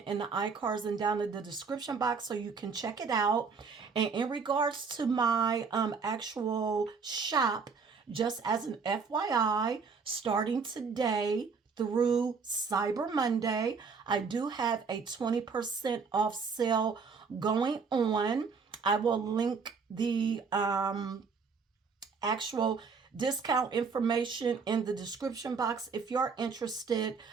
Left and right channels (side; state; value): left; quieter; 5.2 dB